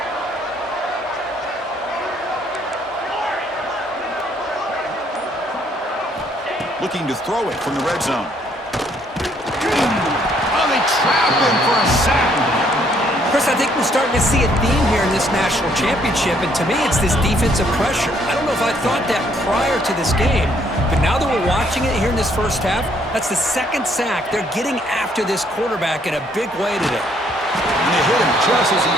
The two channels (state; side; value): normal; both; correlation 0.67